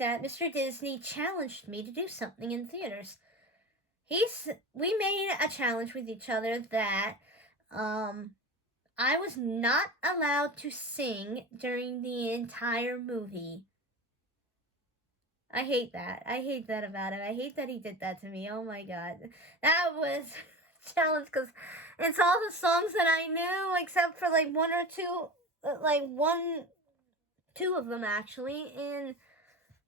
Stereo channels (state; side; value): normal; both; correlation 0.30